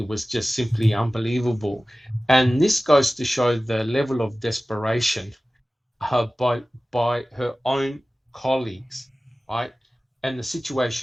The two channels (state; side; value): normal; both; correlation 0.97